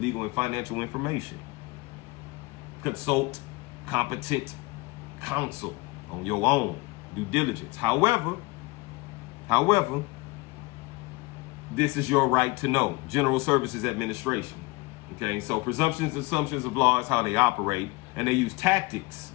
and financial information. Consult competent counsel on your own due diligence. However, this is your right to know. General Services Administration. Okay, so presumptions, assumptions of law is how they operate, and they use tactics.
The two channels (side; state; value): right; quieter; 24.2 dB